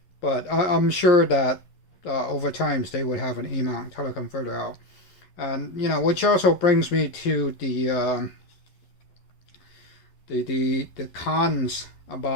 but I'm sure that over time they would have an E mount teleconverter out. And you know, which also brings me to the the cons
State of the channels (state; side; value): late; right; 11 ms